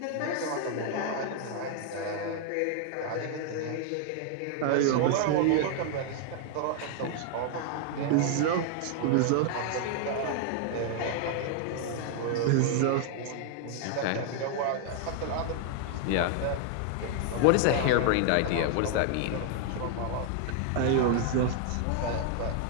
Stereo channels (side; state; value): both; different; correlation 0.00